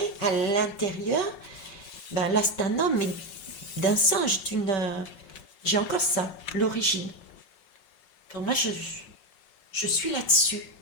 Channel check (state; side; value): late; right; 5.5 ms